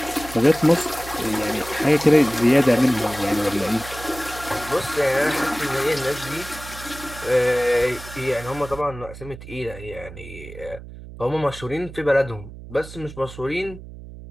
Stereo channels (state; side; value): noise; right; hum, 14 dB below the sound